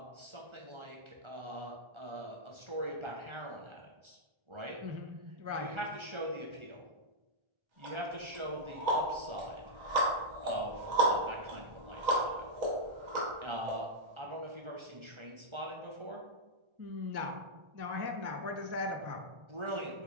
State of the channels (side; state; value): left; late; 1.3 ms